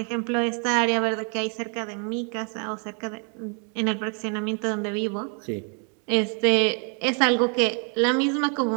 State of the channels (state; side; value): quieter; left; 40.0 dB